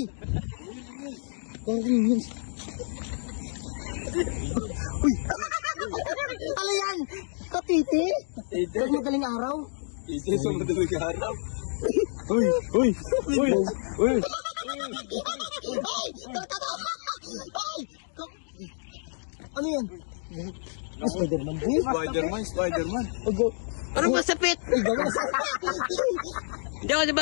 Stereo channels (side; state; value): right; silent; digital silence